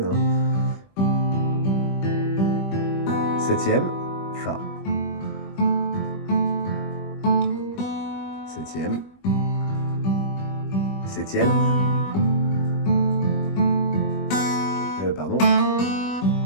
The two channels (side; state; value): right; late; 21 ms